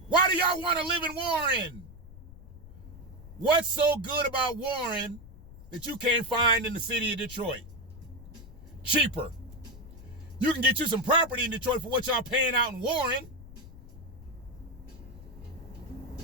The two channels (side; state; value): left; noise; rumble, 17 dB below the sound